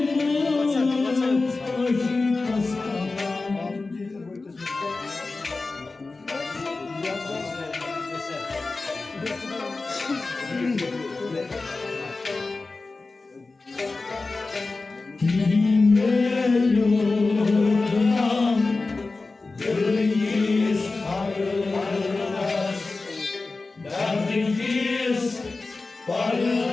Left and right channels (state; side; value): quieter; right; 3.6 dB